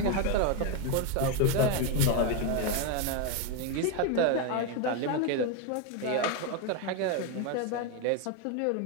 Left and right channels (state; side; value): different; both; correlation 0.02